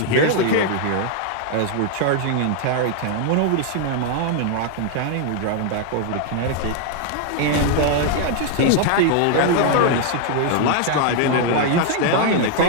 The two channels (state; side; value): different; both; correlation 0.00